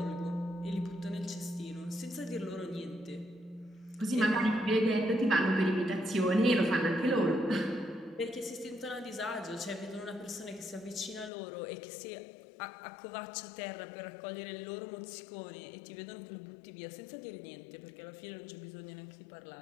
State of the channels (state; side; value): drops out; right; at 11.3 s